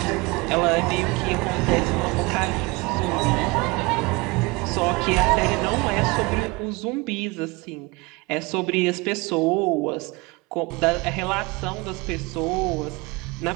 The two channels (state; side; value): quieter; left; 25.2 dB